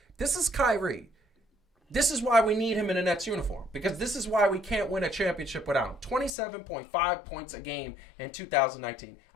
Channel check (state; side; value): drops out; right; at 6.3 s